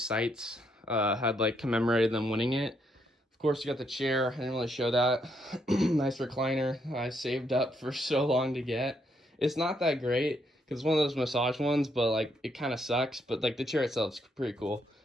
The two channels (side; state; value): both; normal; correlation 0.75